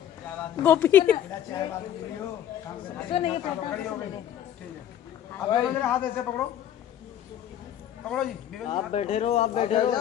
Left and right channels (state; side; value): quieter; right; 10.7 dB